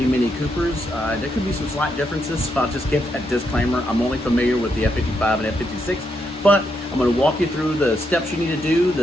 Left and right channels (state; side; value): normal; both; correlation 0.80